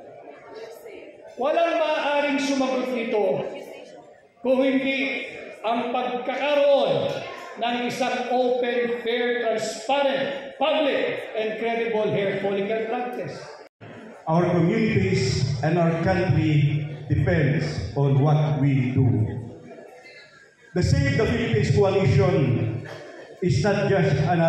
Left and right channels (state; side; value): identical; both; correlation 1.00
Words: Walang maaaring sumagot nito kung hindi ang pagkakaroon ng isang open, fair, transparent, public, and credible hair follicle drug test. Our communities and our country depends on what we do. The Save the Philippines Coalition is not just